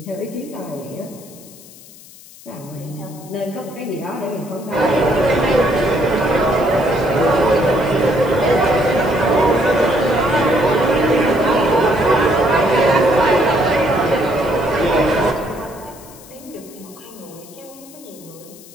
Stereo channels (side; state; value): left; noise; hiss, 21 dB below the sound